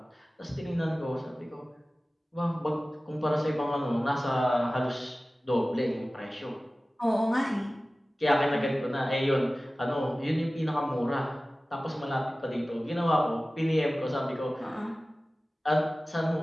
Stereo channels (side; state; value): both; normal; correlation 0.97